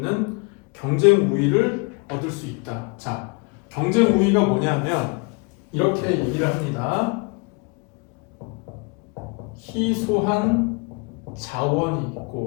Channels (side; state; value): right; quieter; 31.0 dB